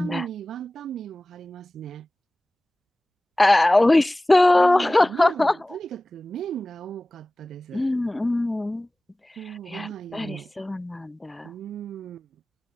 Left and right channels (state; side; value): normal; both; correlation 0.98